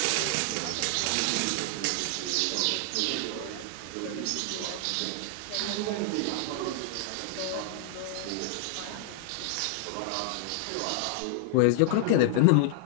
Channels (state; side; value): different; both; correlation 0.00